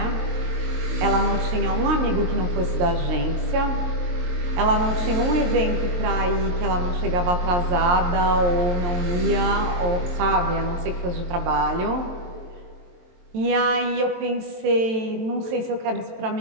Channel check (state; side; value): late; left; 22 ms